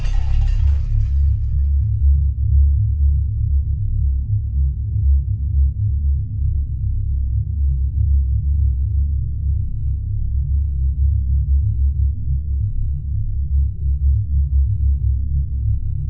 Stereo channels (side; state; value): both; identical; correlation 1.00